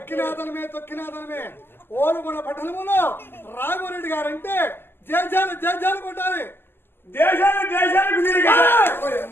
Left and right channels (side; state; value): right; late; 0.11 ms